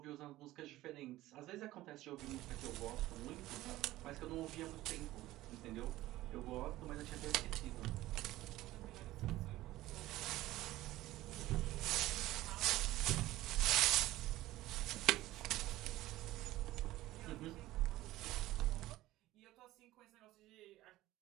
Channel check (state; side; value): quieter; left; 16.4 dB